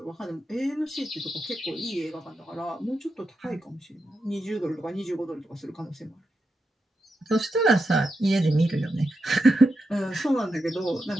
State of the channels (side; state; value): both; normal; correlation 0.86